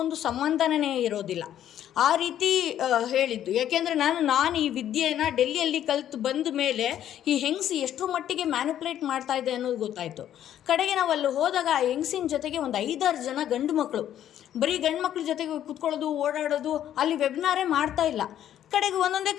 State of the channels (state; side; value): quieter; right; 11.0 dB